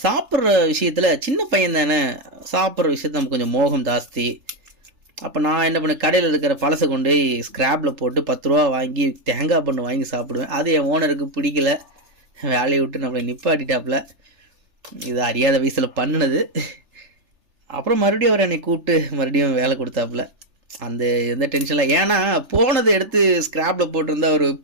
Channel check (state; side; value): late; left; 3.4 ms